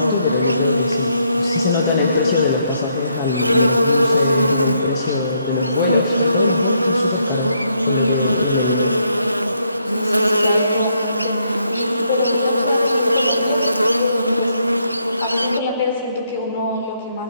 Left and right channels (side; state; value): both; inverted; correlation -0.74